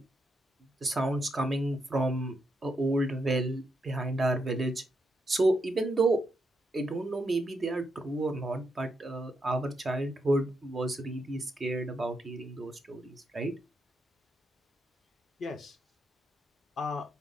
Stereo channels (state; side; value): normal; both; correlation 0.81